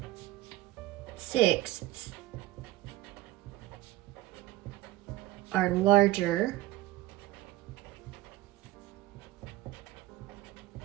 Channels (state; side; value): quieter; left; 17.0 dB